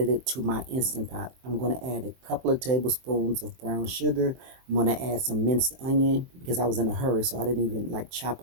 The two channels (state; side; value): late; left; 23 ms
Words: it to my Instant Pot. I'm going to add a couple of tablespoons of brown sugar. I'm going to add some minced onion because I was in a hurry, so I didn't even like chop